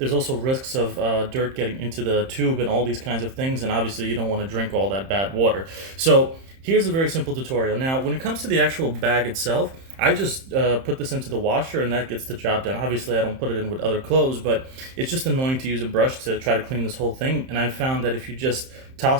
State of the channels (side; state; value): left; late; 31 ms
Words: also risks of dirt getting into the tube and all these kinds of things, and obviously you don't want to drink all that bad water. So here's a very simple tutorial. Now, when it comes to the actual bag itself, I just put this into the washer and that gets the job done. Obviously, I don't put it in with other clothes, but it's just annoying to use a brush to try to clean this whole thing. And I found that if you just